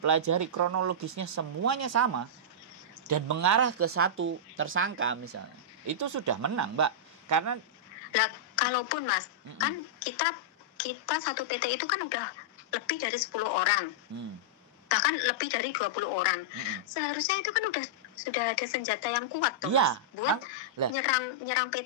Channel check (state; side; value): normal; both; correlation -0.10